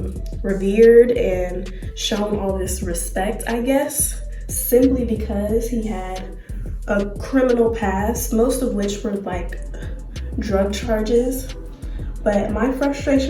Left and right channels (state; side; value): identical; both; correlation 1.00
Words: revered and shown all this respect, I guess, simply because he had a criminal past, most of which were like drug charges. But my